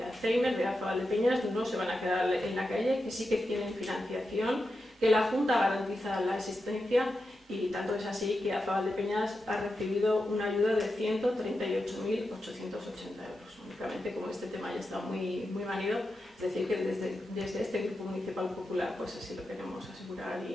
Alzheimer, de AFA Valdepeñas, no se van a quedar en la calle, que sí que tienen financiación, que la Junta garantiza la asistencia, y tanto es así que AFA Valdepeñas ha recibido una ayuda de 138.880 euros. Únicamente, como este tema ya está muy manido, es decir, que desde este Grupo Municipal Popular pues así lo queremos asegurar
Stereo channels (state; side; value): normal; both; correlation 0.89